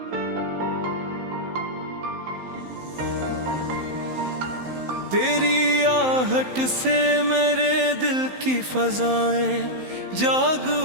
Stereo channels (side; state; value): left; late; 15 ms